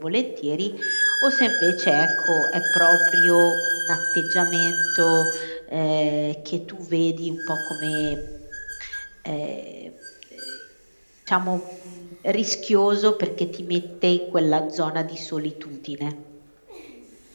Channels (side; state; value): both; inverted; correlation -1.00